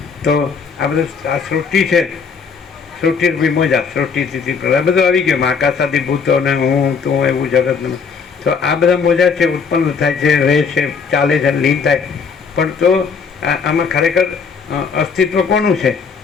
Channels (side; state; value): right; quieter; 5.7 dB